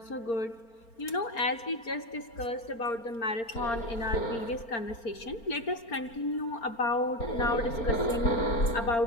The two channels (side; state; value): right; late; 4.4 ms